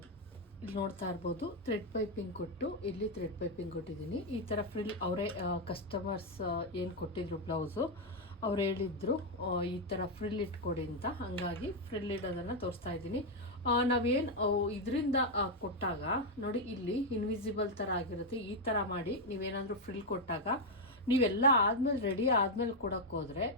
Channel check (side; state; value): both; normal; correlation 0.02